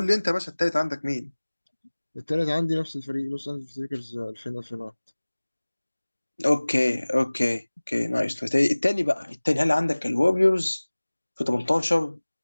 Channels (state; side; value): inverted; both; correlation -1.00